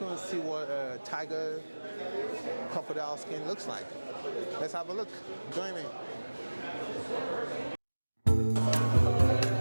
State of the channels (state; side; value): inverted; both; correlation -1.00